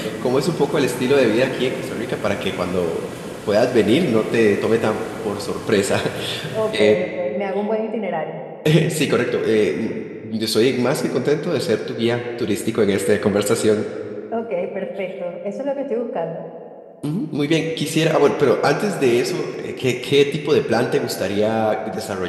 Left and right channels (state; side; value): identical; both; correlation 1.00